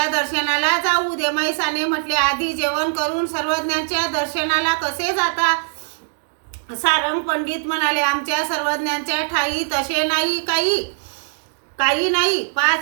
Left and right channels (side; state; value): left; silent; digital silence